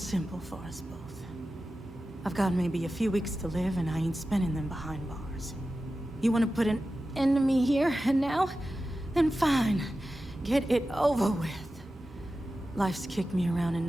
for us both? I've got maybe a few weeks to live, and I ain't spending them behind bars. You want to put an end to me here and now? Then fine. Get it over with. Life's kicked me around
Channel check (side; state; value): both; normal; correlation 0.93